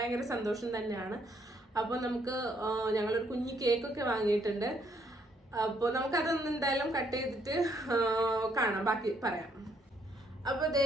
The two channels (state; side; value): normal; both; correlation 0.70